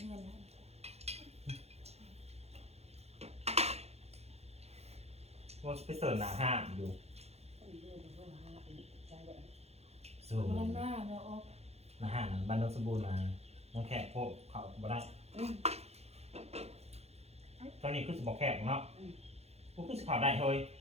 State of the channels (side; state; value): left; late; 0.31 ms